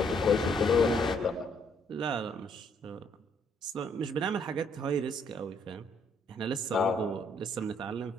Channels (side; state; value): both; normal; correlation 0.68